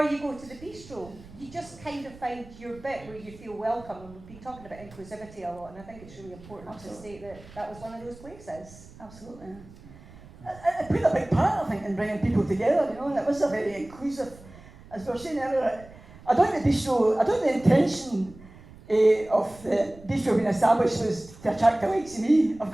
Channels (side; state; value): right; noise; rumble, 20 dB below the sound